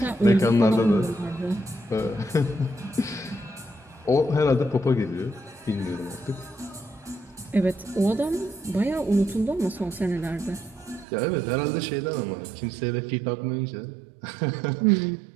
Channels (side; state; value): left; drops out; at 11.1 s